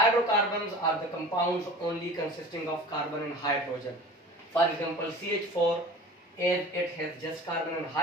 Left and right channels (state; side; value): normal; both; correlation 0.39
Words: are the compounds only consisting of carbon and hydrogen. For example, CH4, as it has just carbon and